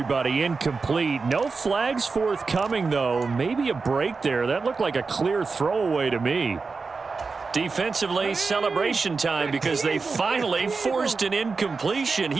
incomplete. No flags forthcoming, though. Maybe a break there. That looked like a clear throwaway to me. Defensively, celebration time because they finally forced an incompletion.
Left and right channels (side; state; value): left; quieter; 4.5 dB